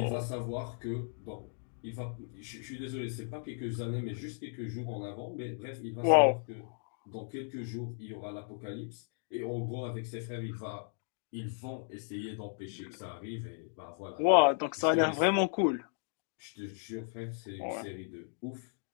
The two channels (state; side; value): silent; right; digital silence